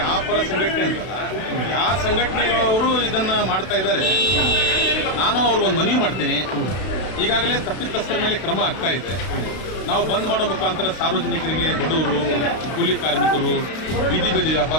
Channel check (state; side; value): late; right; 32 ms